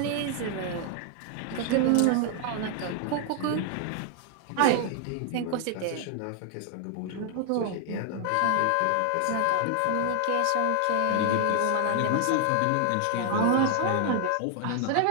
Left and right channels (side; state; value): both; different; correlation 0.00